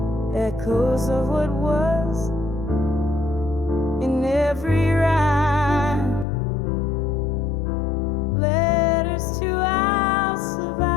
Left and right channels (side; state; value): right; drops out; at 6.2 s